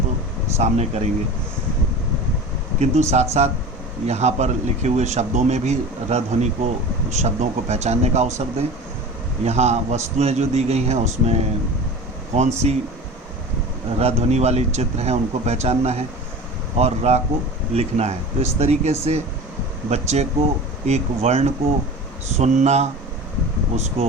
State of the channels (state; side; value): normal; both; correlation 0.35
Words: तो सामने करेंगे। किंतु साथ साथ यहाँ पर लिखे हुए शब्दों में भी र ध्वनि को, शब्दों को पहचानने का अवसर दें। यहाँ वस्तुएं जो दी गई हैं उसमें कौन सी र ध्वनि वाली चित्र हैं उनको पहचानना है और रा को लिखना है। तो इस तरीके से बच्चे को एक वर्ण को सुनना,